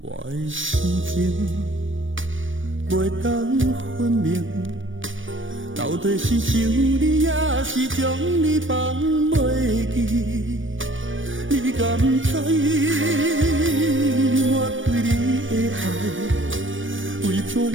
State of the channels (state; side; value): late; left; 0.57 ms